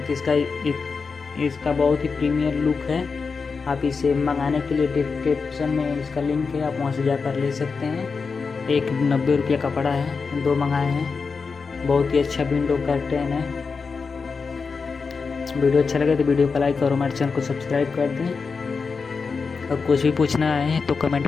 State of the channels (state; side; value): quieter; right; 5.0 dB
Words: कि इसका बहुत ही प्रीमियर लुक है। आप इसे मंगाने के लिए डिस्क्रिप्शन में इसका लिंक है, आप वहां से जाकर ले सकते हैं। एक 90 रुपये का पड़ा है, दो मंगाए हैं। बहुत ही अच्छा विंडो कर्टेन है। वीडियो अच्छा लगे तो वीडियो को लाइक और हमारे चैनल को सब्सक्राइब कर दें। और कुछ भी पूछना है तो कमेंट